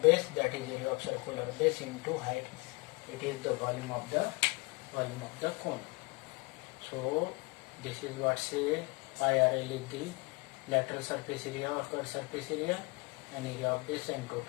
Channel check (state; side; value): quieter; right; 27.0 dB